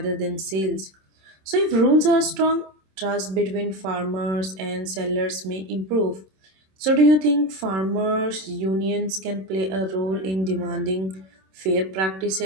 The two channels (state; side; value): late; left; 26 ms